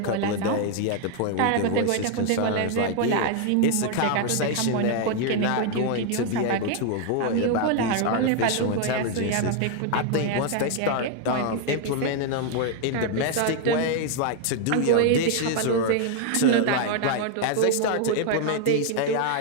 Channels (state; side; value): different; both; correlation 0.00